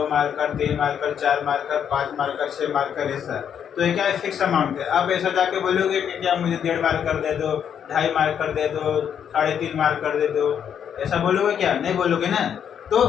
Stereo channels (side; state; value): right; quieter; 8.4 dB